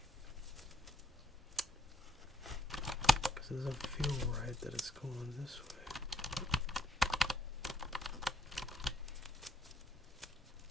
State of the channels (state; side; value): normal; both; correlation 0.71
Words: Because it doesn't feel right that it's going this way.